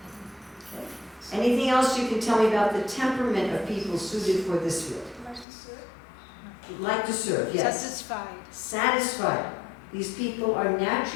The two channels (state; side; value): drops out; right; at 5.5 s